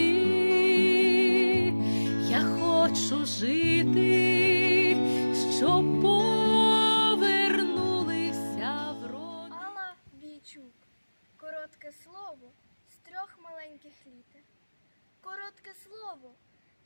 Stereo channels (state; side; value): inverted; both; correlation -1.00